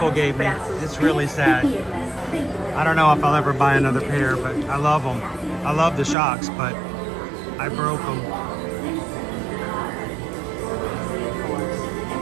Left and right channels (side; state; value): left; drops out; at 6.2 s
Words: gave me. It's really sad. I don't know if I'll ever buy another pair, but I love them. I love the shocks, but I broke them.